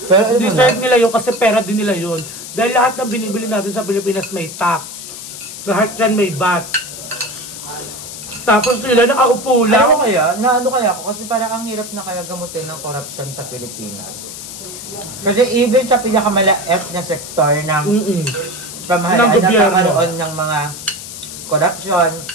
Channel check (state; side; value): noise; left; hiss, 11 dB below the sound